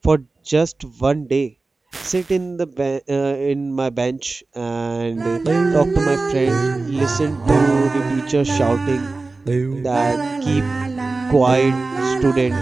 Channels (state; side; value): quieter; left; 3.6 dB